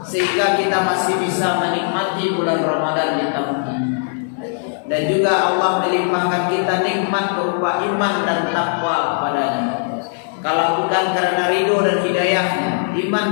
kita masih bisa menikmati bulan Ramadan di tahun ini. Dan juga Allah melimpahkan kita nikmat berupa iman dan takwa kepadanya. Kalau bukan karena ridho dan hidayahnya,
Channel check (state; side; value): silent; right; 67 dB below the other